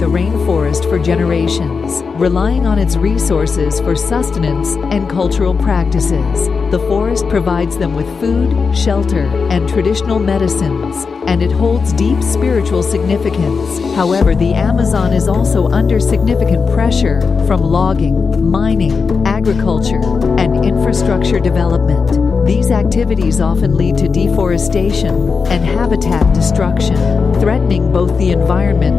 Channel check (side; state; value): right; quieter; 5.1 dB